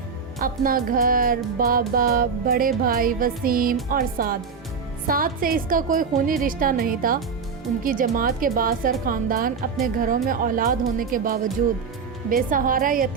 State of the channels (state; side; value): quieter; left; 5.6 dB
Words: اپنا گھر، بابا، بڑے بھائی وسیم اور سعد سے اس کا کوئی خونی رشتہ نہیں تھا۔ ان کی جماعت کے بااثر خاندان اپنے گھروں میں اولاد ہونے کے باوجود بے سہارا